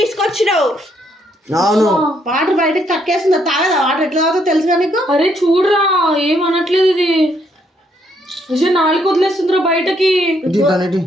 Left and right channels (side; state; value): both; normal; correlation 0.72